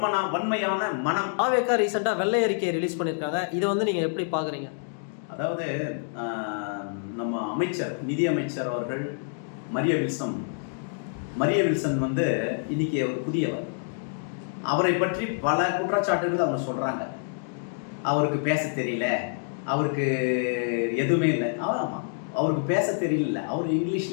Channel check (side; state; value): right; silent; digital silence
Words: வன்மையான மனம். தாவேகா ரீசெண்டா வெள்ளை அறிக்கையை ரிலீஸ் பண்ணிருக்காங்க. இதை வந்து நீங்க எப்படி பாக்குறீங்க? அதாவது நம்ம அமைச்சர், நிதி அமைச்சர் அவர்கள் மரிய வில்சன் வந்து இன்னைக்கு ஒரு புதியவர். அவரை பற்றி பல குற்றச்சாட்டுகள் அவங்க சொல்றாங்க. அவருக்கு பேச தெரியல, அவருக்கு எதுவுமே இல்லை. ஆமாம், அவருக்கு பேச தெரியல, அவர்